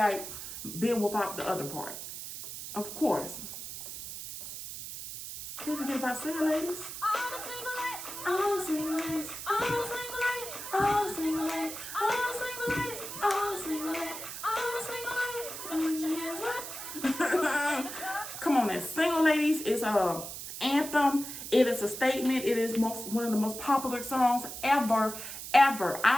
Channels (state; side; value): noise; right; hiss, 9 dB below the sound